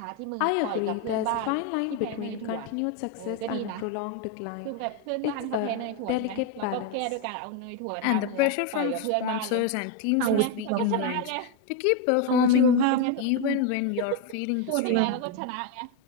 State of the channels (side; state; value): both; different; correlation 0.02